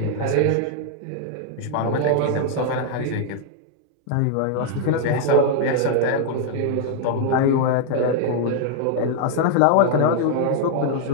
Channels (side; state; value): both; different; correlation 0.00